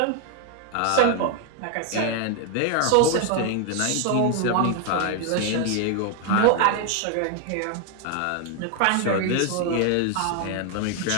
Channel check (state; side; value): different; both; correlation 0.01